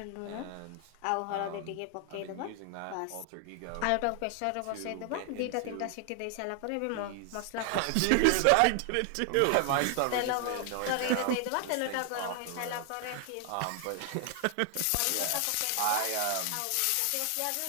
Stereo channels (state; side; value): different; both; correlation 0.00